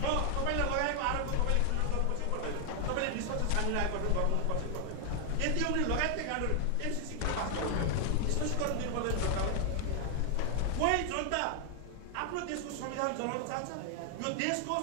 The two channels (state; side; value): different; both; correlation 0.00